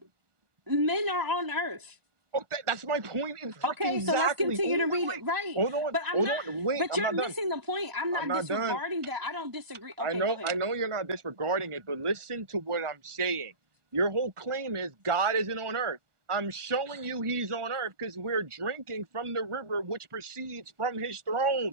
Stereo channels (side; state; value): left; late; 1.2 ms